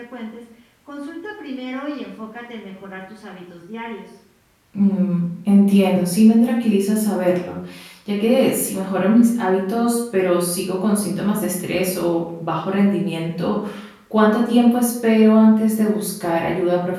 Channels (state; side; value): identical; both; correlation 1.00